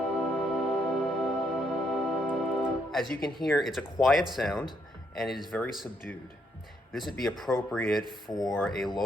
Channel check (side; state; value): both; normal; correlation 0.74